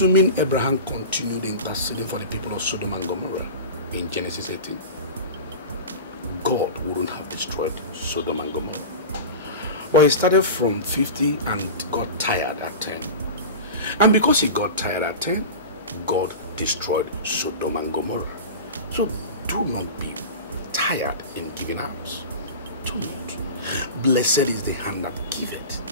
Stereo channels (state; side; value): inverted; both; correlation -0.30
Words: Abraham continued interceding for the people of Sodom and Gomorrah in Genesis 18, God wouldn't have destroyed Sodom and Gomorrah. But he started from 50 and got tired at 10. And because he got tired at 10, God destroyed Sodom and Gomorrah. So do not be tired in giving out. Do not. Blessed is the hand that giveth,